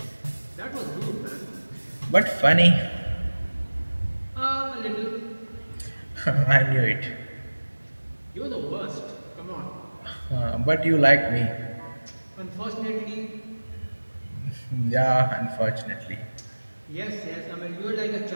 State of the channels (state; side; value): inverted; both; correlation -1.00